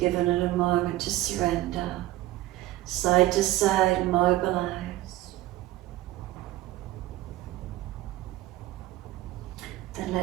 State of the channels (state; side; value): quieter; left; 16.4 dB